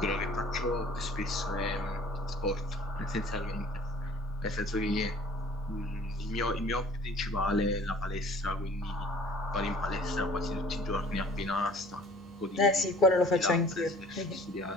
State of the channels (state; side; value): normal; both; correlation 0.50